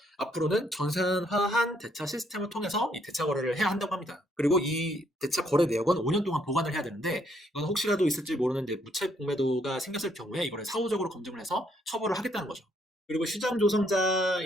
앞으로는 전산화한 대차 시스템을 통해서 이 대차 거래를 해야 한다고 합니다. 그리고 이 대차 거래 내역은 5년 동안 보관을 해야 되는데, 이건 혹시라도 있을지 모르는 이제 무차익 공매도가 생겼을 경우에 이거를 사후적으로 검증을 해서 처벌을 하겠다는 거죠. 그리고 시장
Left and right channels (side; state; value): both; normal; correlation 0.71